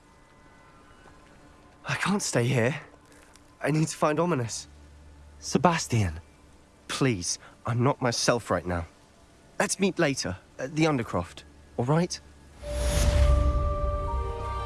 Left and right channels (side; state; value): both; identical; correlation 1.00